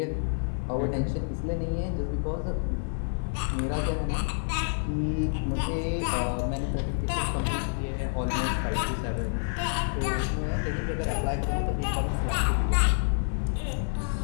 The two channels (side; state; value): right; silent; digital silence